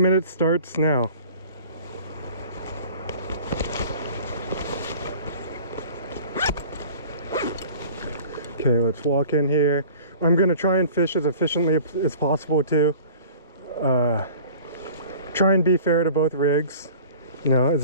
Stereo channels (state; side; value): inverted; both; correlation -0.45